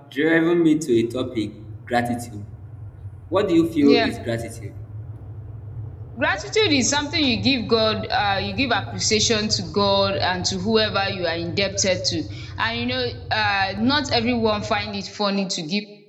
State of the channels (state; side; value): identical; both; correlation 1.00